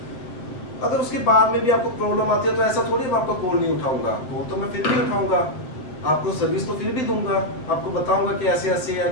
अगर उसके बाद में भी आपको प्रॉब्लम आती है तो ऐसा थोड़ी मैं आपका कॉल नहीं उठाऊंगा, कॉल तो मैं फिर भी उठाऊंगा, आपको सर्विस तो फिर भी दूंगा, आपको बताऊंगा कि ऐसे ऐसे है,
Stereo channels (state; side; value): late; right; 7.7 ms